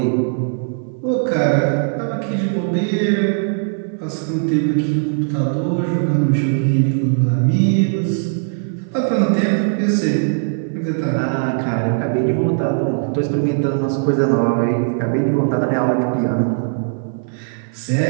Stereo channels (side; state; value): left; silent; 56 dB below the other